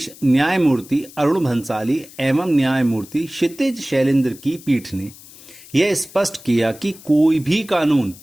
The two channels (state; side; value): noise; left; hiss, 20 dB below the sound